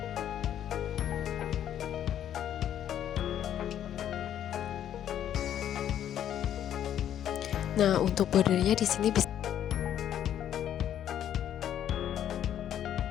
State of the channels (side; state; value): right; quieter; 10.4 dB